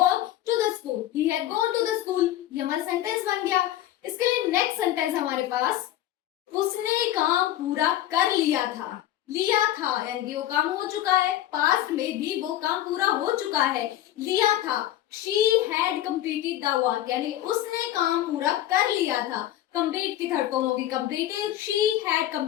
to the school, he had gone to the school. ये हमारा सेंटेंस बन गया। इसके लिए नेक्स्ट सेंटेंस हमारे पास, उसने काम पूरा कर लिया था, लिया था, यानी कि वो काम हो चुका है, पास्ट में भी वो काम पूरा हो चुका है, लिया था। She had completed the work, यानी उसने काम पूरा कर लिया था। कंप्लीट की थर्ड फॉर्म होगी completed, she had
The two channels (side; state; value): right; quieter; 13.2 dB